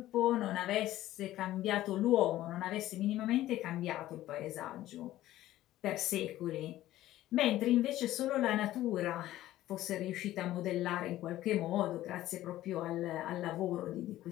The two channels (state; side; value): quieter; right; 14.7 dB